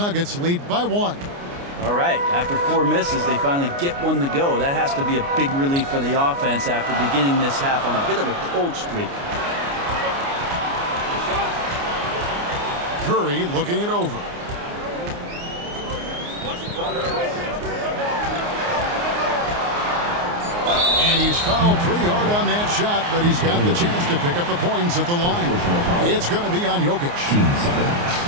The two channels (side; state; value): left; late; 29 ms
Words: lead by 1. All right, after 4 misses, they finally get one to go. That has to be a big relief for the offense after beginning this half on a bit of a cold streak. Curry looking it over. And he's fouled pretty hard on that shot, but he's got the chance to pick up the points at the line. It's going to be on Jokic.